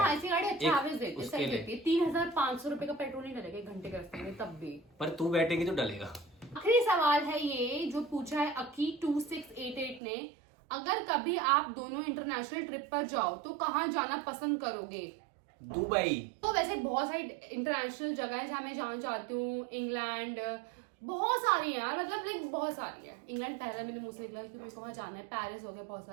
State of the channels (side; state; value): left; drops out; at 10.0 s